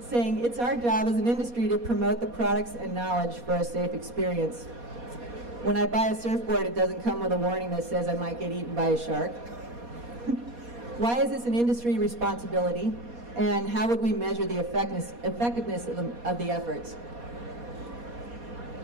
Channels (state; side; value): late; left; 4.2 ms